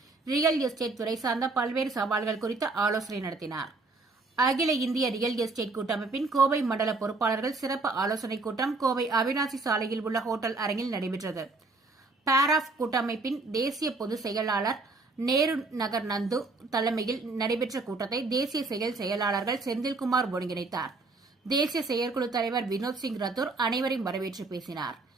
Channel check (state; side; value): quieter; left; 3.5 dB